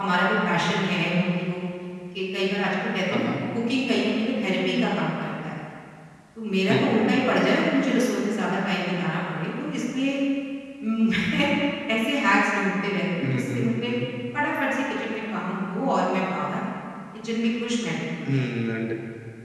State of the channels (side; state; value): both; identical; correlation 1.00